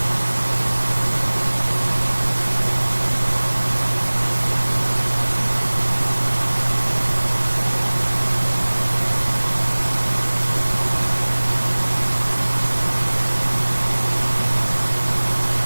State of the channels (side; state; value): both; inverted; correlation -1.00